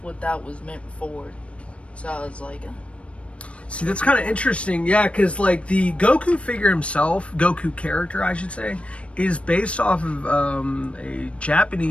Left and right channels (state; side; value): late; right; 0.061 ms